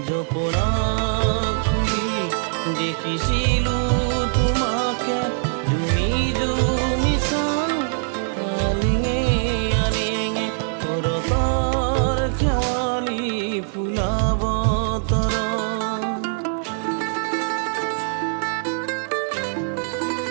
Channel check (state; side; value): silent; left; digital silence